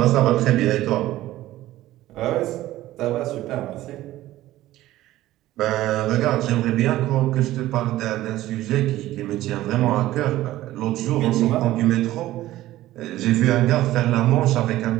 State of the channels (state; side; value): quieter; left; 15.4 dB